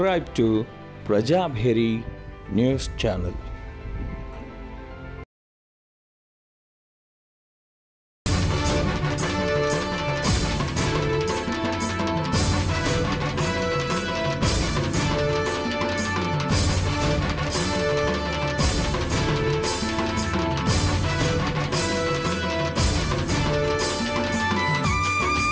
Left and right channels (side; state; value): both; identical; correlation 1.00